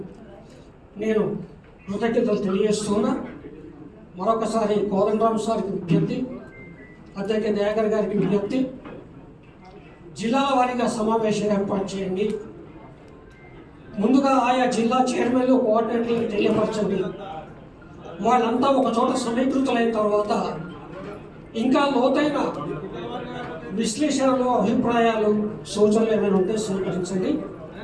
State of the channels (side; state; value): both; identical; correlation 1.00